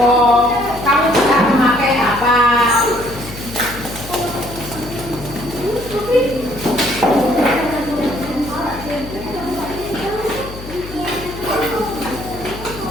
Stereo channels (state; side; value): noise; left; hum, 13 dB below the sound